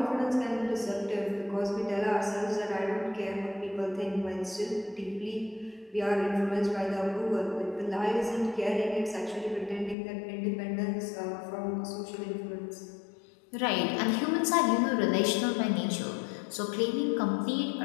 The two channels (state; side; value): drops out; right; at 10.0 s